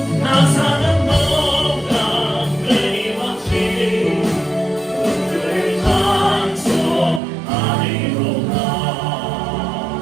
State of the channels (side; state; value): left; drops out; at 7.2 s